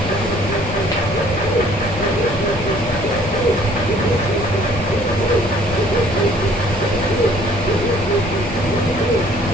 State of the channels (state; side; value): normal; both; correlation 0.57